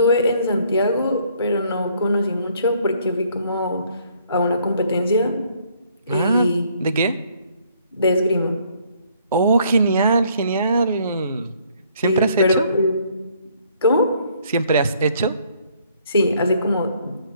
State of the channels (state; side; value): inverted; both; correlation -0.64